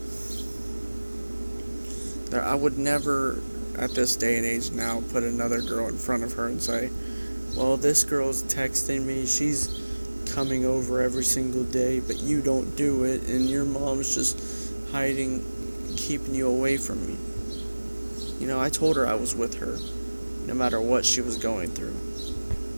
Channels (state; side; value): inverted; both; correlation -1.00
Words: I would never, at this day and age now, put another girl in front of her and say, well, this girl's texting me, she's coming over every single day, but you don't do it, and your mom's just hiding, keeping you away from me. I told her I was with her, no matter what she was going through.